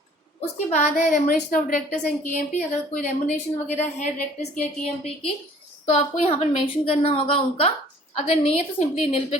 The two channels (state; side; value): normal; both; correlation 0.53